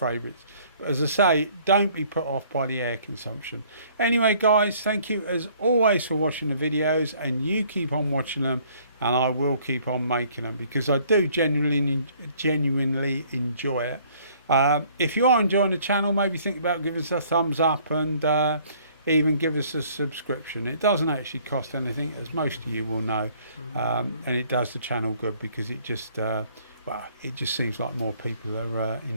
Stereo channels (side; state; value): both; inverted; correlation -0.59